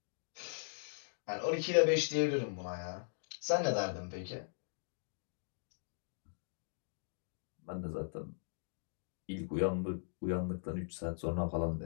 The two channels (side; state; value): right; silent; digital silence